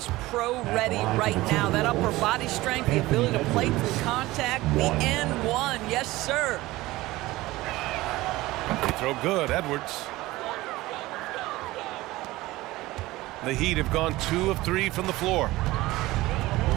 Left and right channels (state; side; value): quieter; left; 18.6 dB